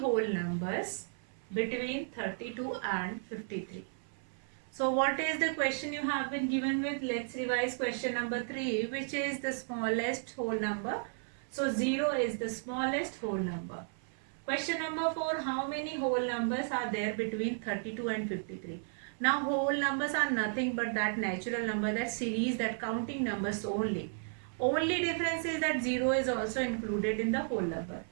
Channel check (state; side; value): silent; left; 55 dB below the other